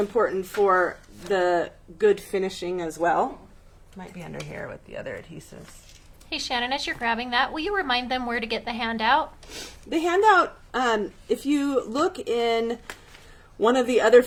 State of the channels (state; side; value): identical; both; correlation 1.00